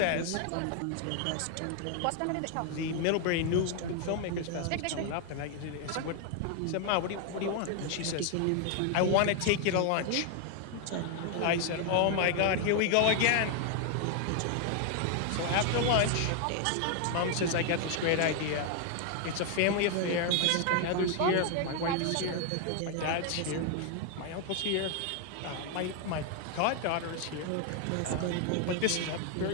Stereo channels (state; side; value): different; both; correlation 0.00